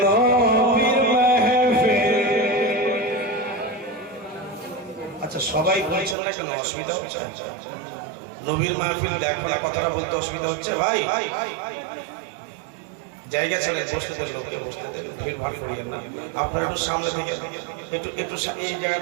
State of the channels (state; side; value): drops out; left; at 6.2 s